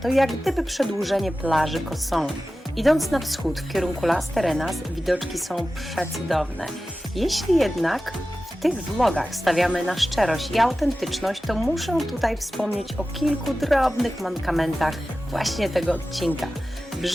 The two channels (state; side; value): normal; both; correlation 0.95